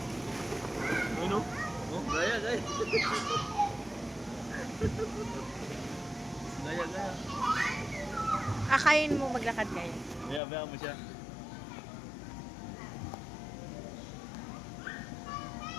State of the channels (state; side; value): drops out; right; at 10.4 s